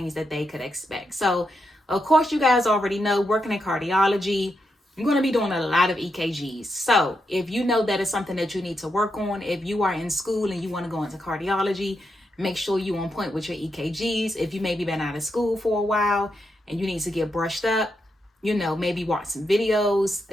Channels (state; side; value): normal; both; correlation 0.83